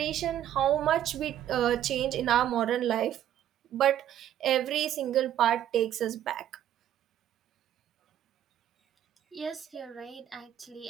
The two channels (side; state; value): left; quieter; 11.3 dB